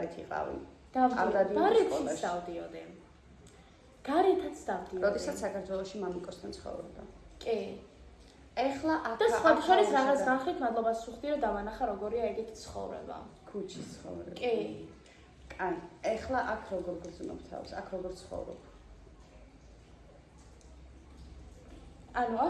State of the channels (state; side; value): identical; both; correlation 1.00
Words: იყავი. არ დადიოდი სკოლაში. დავდიოდი. გარეთაც დავდიოდი. როდესაც საქართველოში მამიკოსთან ცხოვრობდა. კი. ეხლა აქ და სხვა შორის რაღაც განხით მადლობას ვუხდი რომ დავანახა როგორია ეგეთი ცხოვრება. ქუჩის ცხოვრება. კი. აი, ეხლა აქ როგორ გრძნობ თავს? აქ როგორ ცხოვრობ?